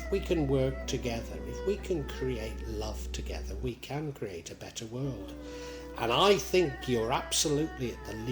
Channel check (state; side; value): identical; both; correlation 1.00